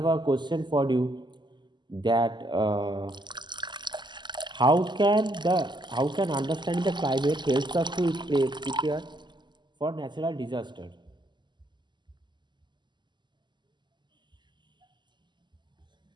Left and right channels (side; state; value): left; late; 0.22 ms